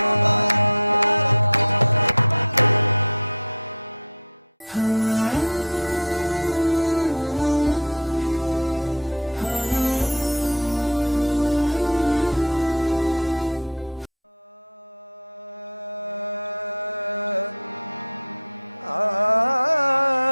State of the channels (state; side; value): normal; both; correlation -0.09